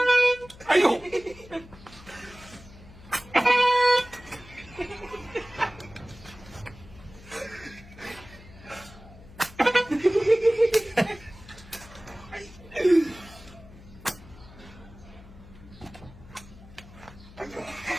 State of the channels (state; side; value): noise; left; hum, 20 dB below the sound